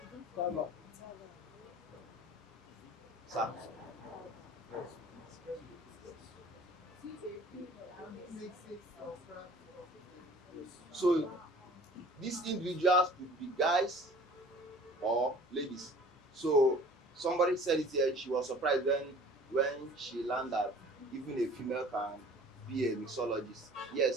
No. Sir. So these individuals could be guys or ladies. So somebody said it here, she was surprised when she learned that even a female can be a mixologist.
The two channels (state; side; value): normal; both; correlation 0.48